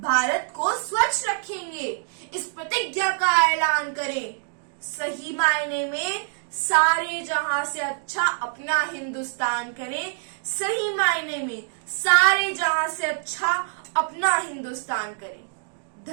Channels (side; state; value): left; silent; digital silence